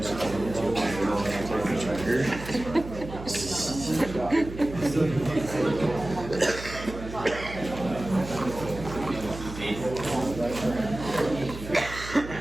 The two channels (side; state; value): right; noise; hum, 11 dB below the sound